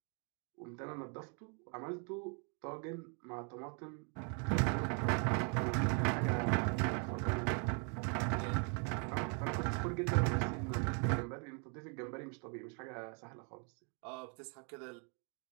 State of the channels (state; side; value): quieter; left; 38.1 dB